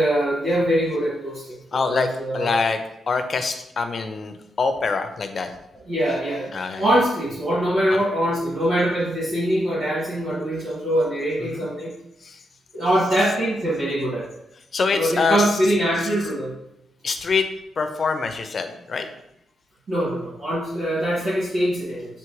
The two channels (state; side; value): normal; both; correlation 0.82